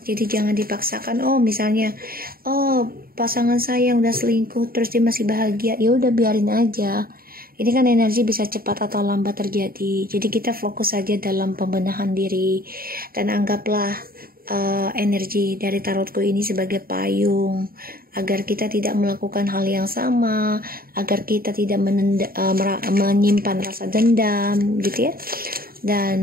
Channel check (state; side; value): late; left; 0.43 ms